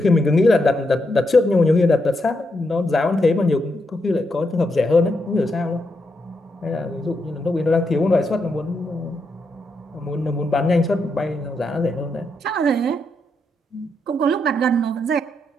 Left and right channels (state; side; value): normal; both; correlation 0.82